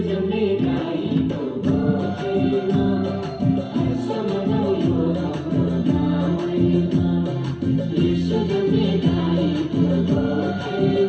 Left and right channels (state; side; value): identical; both; correlation 1.00